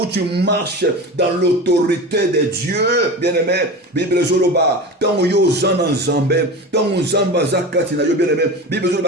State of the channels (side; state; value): both; normal; correlation 0.29